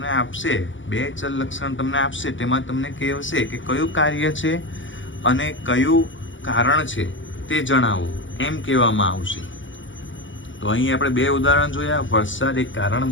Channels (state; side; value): late; right; 0.55 ms